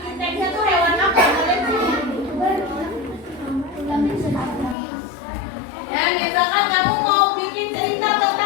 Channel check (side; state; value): right; drops out; at 4.8 s